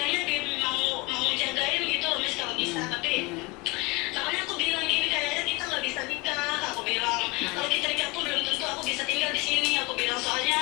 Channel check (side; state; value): right; quieter; 25.6 dB